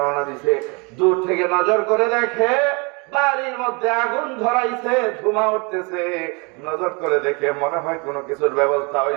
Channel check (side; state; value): left; quieter; 30.7 dB